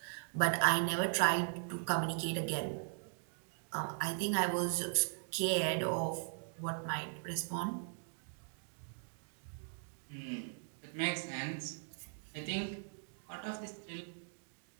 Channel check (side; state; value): left; silent; digital silence